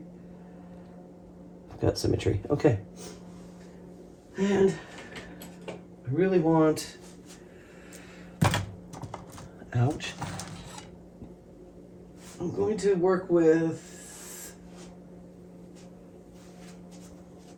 I've got symmetry. Okay. And I really want, ouch, I'm going to work with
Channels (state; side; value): identical; both; correlation 1.00